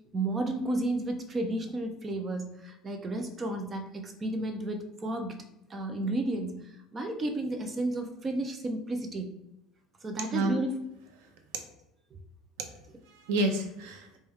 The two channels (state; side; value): normal; both; correlation 0.56